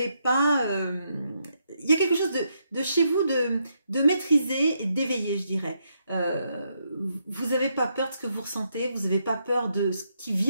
pas... il y a quelque chose de chez vous de maîtrisé et d'éveillé, je dirais. Vous n'avez pas peur de ce que vous ressentez, vous n'avez pas peur de ce qui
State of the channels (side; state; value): both; inverted; correlation -0.79